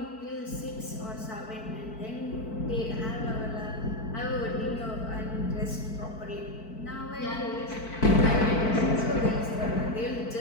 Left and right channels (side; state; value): right; late; 4.5 ms